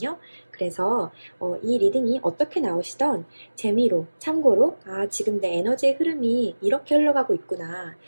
그래서 이 리딩이 어떻게 나오시던 재미로, 참고로, 지금 내 에너지의 흐름이 이렇게 흘러가고 있구나.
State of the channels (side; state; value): both; inverted; correlation -1.00